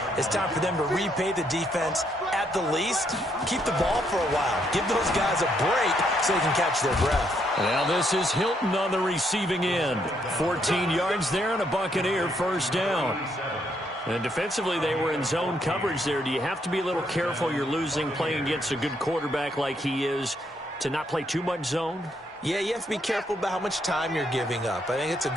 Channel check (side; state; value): both; normal; correlation 0.74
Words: It's time for them to repay the defense at the least. Keep the ball for a while. Give those guys a break so they can catch their breath. Now this is Hilton on the receiving end. 14 yards there and a Buccaneer first down. And defensively, they were in zone coverage there. Do you have to be a little careful? You're losing playing against a good quarterback like he is to not play too much zone? Yeah, you have to be careful about how much time you're giving up. I think it's a